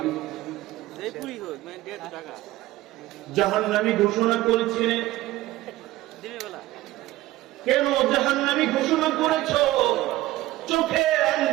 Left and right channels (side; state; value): left; quieter; 16.7 dB